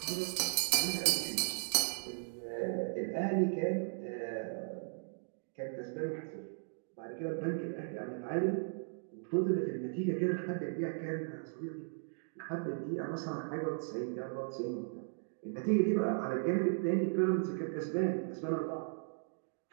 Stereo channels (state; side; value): silent; left; digital silence